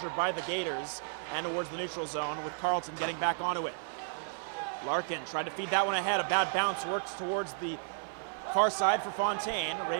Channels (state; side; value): silent; left; digital silence